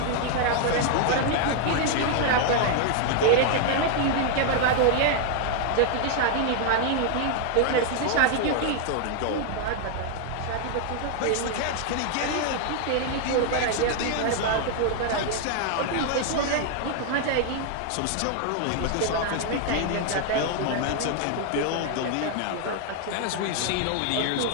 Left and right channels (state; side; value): different; both; correlation 0.00